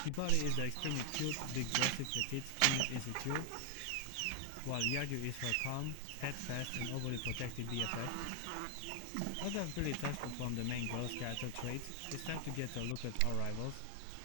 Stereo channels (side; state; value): both; different; correlation 0.00